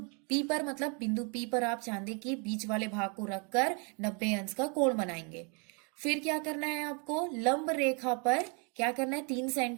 P पर, मतलब बिंदु P पर आप चांदी की बीच वाले भाग को रखकर 90 अंश का कोण बनाएंगे। फिर क्या करना है आपको, लंब रेखा पर क्या करना है, 3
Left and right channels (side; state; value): left; quieter; 35.5 dB